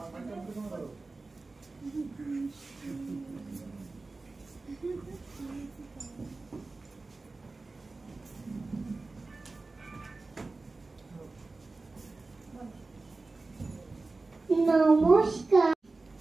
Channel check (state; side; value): quieter; left; 3.5 dB